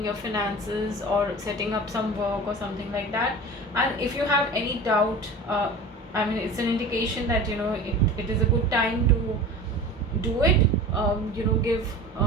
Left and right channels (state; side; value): normal; both; correlation 0.36